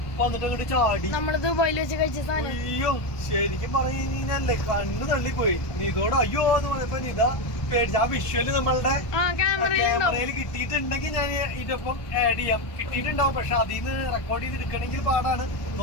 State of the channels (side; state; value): right; late; 1.2 ms